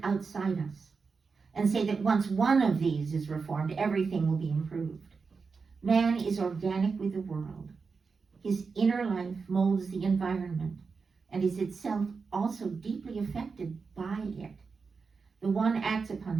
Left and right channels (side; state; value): left; quieter; 4.9 dB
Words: outside us and say that once one of these is reformed, everything will be improved. Man is organic with the world. His inner life molds the environment and is itself also deeply affected by it. The one acts upon